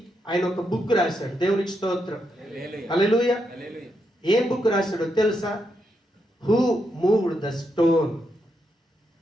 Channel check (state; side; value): normal; both; correlation 0.82